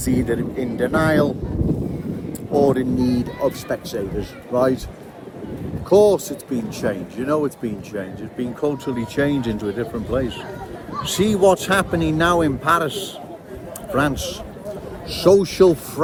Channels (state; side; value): identical; both; correlation 1.00